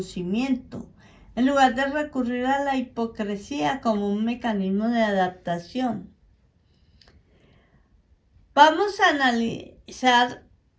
en lugar de recurrir a la hipocresía como un mecanismo de adaptación. Vamos a analizar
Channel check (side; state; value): both; identical; correlation 1.00